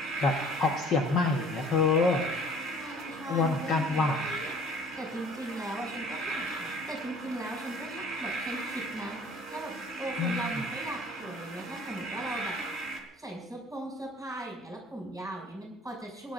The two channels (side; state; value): both; normal; correlation 0.51